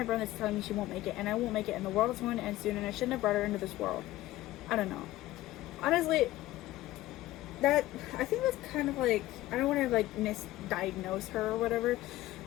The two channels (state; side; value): quieter; right; 15.9 dB